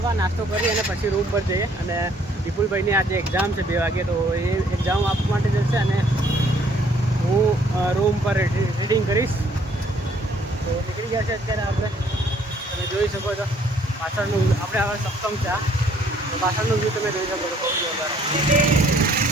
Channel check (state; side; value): normal; both; correlation 0.62